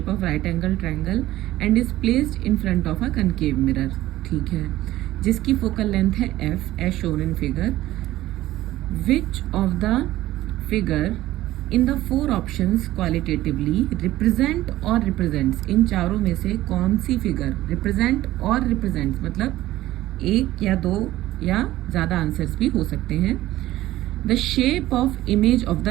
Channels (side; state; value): left; quieter; 15.5 dB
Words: of right angle triangle and is placed in front of a concave mirror। ठीक है, जिसकी focal length है f as shown in figure। which of the figure in the four options qualitatively represent or represents, इन चारों में से कौन सी figure represent और represents मतलब एक या दो या ज़्यादा आंसर्स भी हो सकते हैं। the shape of image of